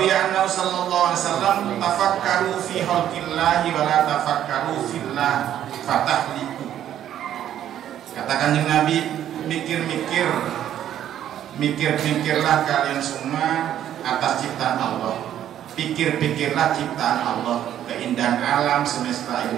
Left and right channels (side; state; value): left; quieter; 10.9 dB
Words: annahu sallallahu alaihi wasallam tafakkaru fi khalqillahi wa la tafakkaru fillah fatahliku. Katakan dengan Nabi, mikirlah kalian semua atas ciptaan Allah. Pikirlah ciptaan Allah, keindahan alam semesta